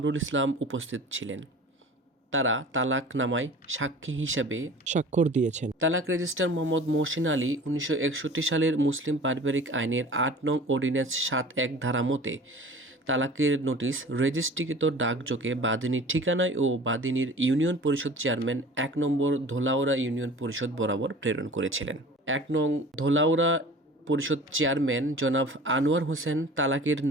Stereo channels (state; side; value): normal; both; correlation 0.42